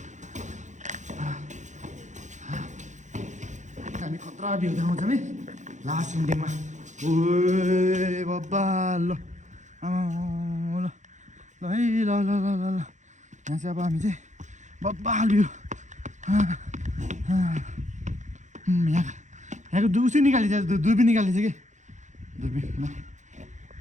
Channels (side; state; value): left; late; 0.35 ms